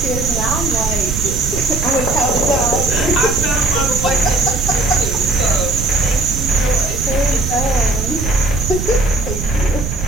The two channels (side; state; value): right; noise; rumble, 4 dB below the sound